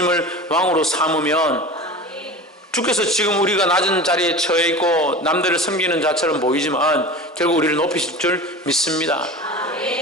왕으로 삼으면 주께서 지금 우리가 낮은 자리에 처해 있고 남들을 섬기는 자처럼 보이지만 결국 우리를 높이실 줄 믿습니다.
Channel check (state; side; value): normal; both; correlation 0.33